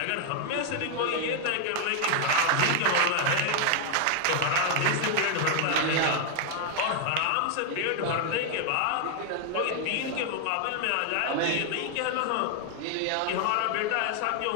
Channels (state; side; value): different; both; correlation 0.00